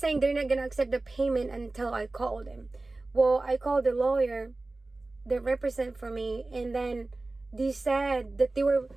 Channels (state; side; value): quieter; left; 3.2 dB